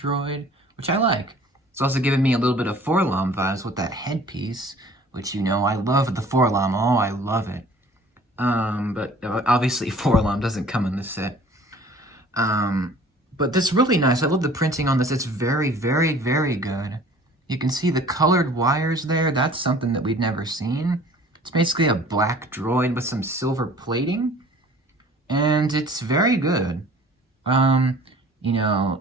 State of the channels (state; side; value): normal; both; correlation 0.49